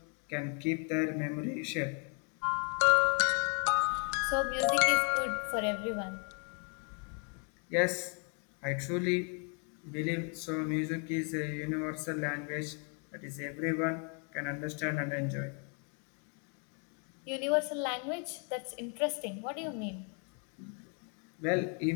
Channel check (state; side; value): quieter; right; 39.1 dB